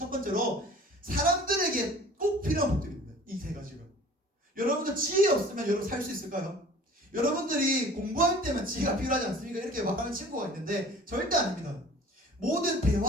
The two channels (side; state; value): both; normal; correlation 0.46